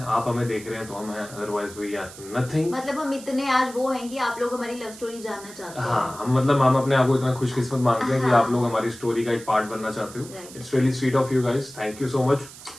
आप हमें देख रहे हैं तो हम हैं, अदरवाइज वी आर नथिंग। मतलब हम इतने आज वो हैं कि आप लोग हमारी लव स्टोरी जानना चाहते हैं। हाँ, हम अपने आप को इतना खुशकिस्मत मानते हैं कि हाँ। आप लोग हमारी स्टोरी का एक पार्ट बनना चाहते हो। Right. It's really sweet of you guys, thank you so much.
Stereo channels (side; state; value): right; noise; hiss, 17 dB below the sound